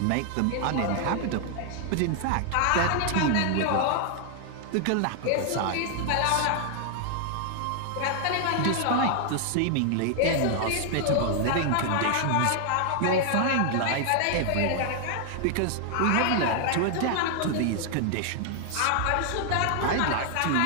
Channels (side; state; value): both; different; correlation 0.00